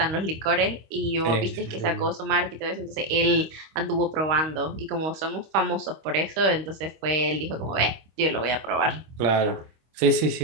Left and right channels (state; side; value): late; left; 25 ms